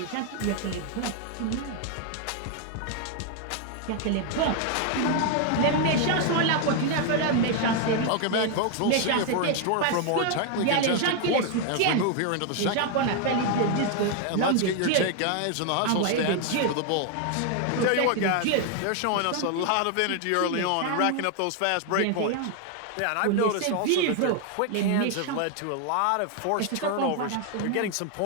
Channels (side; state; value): both; different; correlation 0.00